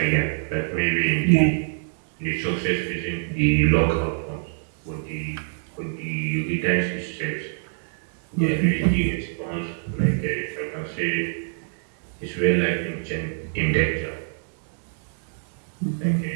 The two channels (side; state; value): left; silent; digital silence